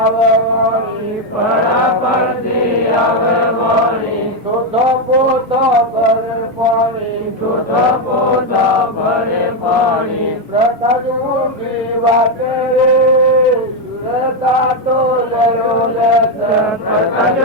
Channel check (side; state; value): both; normal; correlation 0.05